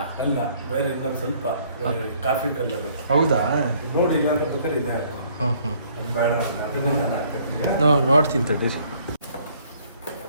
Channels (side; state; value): both; inverted; correlation -0.61